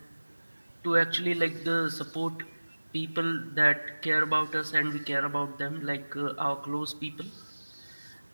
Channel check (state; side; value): inverted; both; correlation -1.00